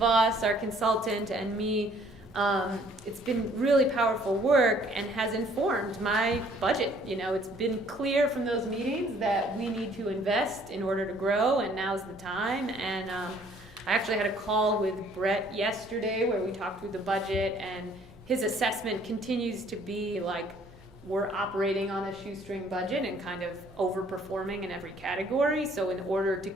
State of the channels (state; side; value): noise; right; hum, 28 dB below the sound